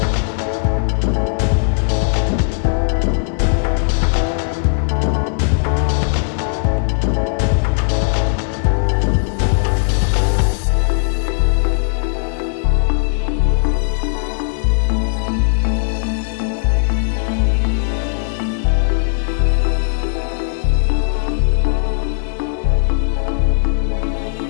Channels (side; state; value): right; silent; 62 dB below the other